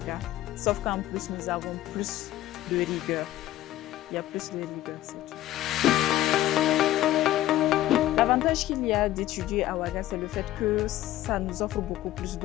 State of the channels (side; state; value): right; quieter; 14.3 dB